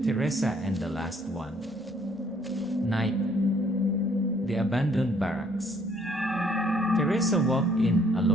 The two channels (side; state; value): both; normal; correlation 0.63